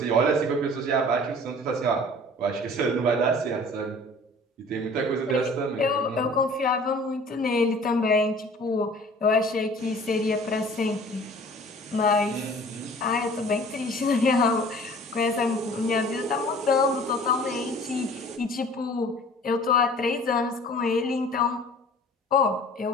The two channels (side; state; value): both; normal; correlation 0.48